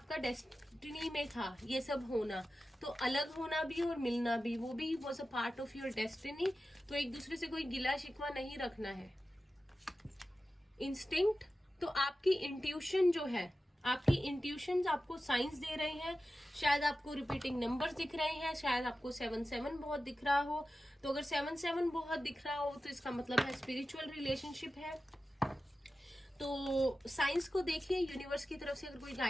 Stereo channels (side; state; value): both; normal; correlation 0.94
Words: डेस्टिनी में था, ये सब होना, तो अलग होना भी और मिलना भी, वो भी was a part of your destiny. तो एक दूसरे से कोई गिला शिकवा नहीं रखना है। इंस्टिंक्ट, तो आपकी इंट्यूशन जो है, आपकी इंट्यूशन आपको साइंस दे रहे हैं। शायद आपको रिपीटिंग नंबर्स दिख रहे हैं, शायद आपको 7-7 बहुत दिख रहा हो। तो अगर 7-7 बहुत दिख रहा हो तो इसका मतलब है स्पिरिचुअल रिलेशनशिप है। तो साइंस को देखिए, यूनिवर्स की तरफ से अगर कोई